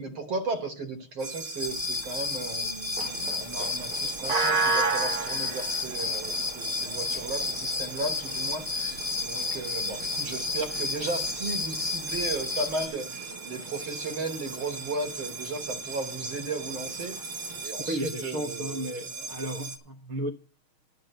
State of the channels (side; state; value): left; late; 6.4 ms